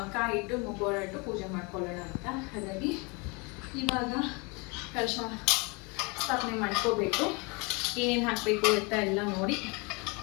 ಕಾಯಿ ಇಟ್ಟು ಮುಖವಾಡ ಇಟ್ಟು ಪೂಜೆ ಮಾಡ್ಕೊಳ್ಳೋಣ ಅಂತ. ಹಾಗಾಗಿ ಇವಾಗ ಕಲಶ ಸ್ಥಾಪನೆ ಮಾಡ್ಕೋಬೇಕು, ಏನೇನು ಹಾಕಬೇಕು ಅಂತ ಎಲ್ಲ ನೋಡಿ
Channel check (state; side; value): quieter; right; 29.4 dB